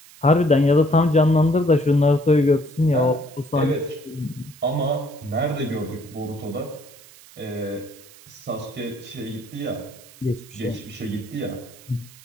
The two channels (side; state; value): right; noise; hiss, 22 dB below the sound